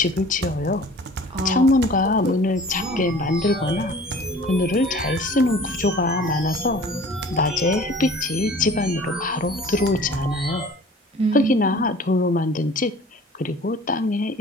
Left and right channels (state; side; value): normal; both; correlation 0.46